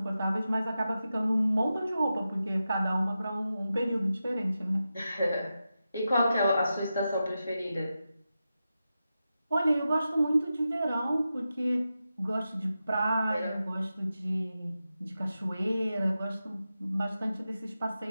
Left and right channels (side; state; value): both; inverted; correlation -0.91